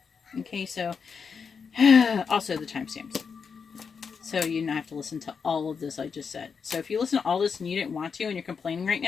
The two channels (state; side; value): quieter; right; 5.9 dB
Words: Okay, so also the timestamps. So you don't have to listen to all of this I just said. So if you listen to all this and you didn't want to and you're complaining right